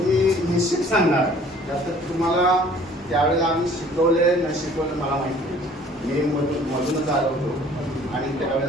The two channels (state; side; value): normal; both; correlation 0.53